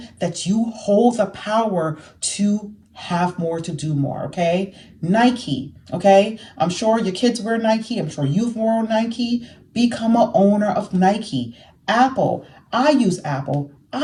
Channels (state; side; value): identical; both; correlation 1.00